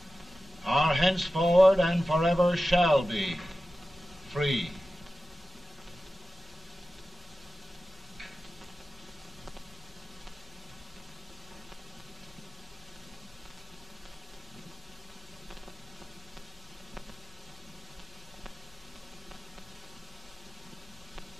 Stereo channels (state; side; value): normal; both; correlation 0.94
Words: are henceforward and forever shall be free.